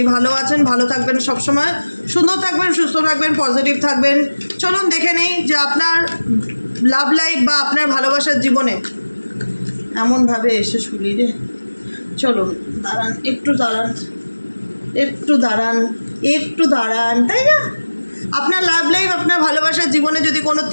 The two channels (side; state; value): both; inverted; correlation -1.00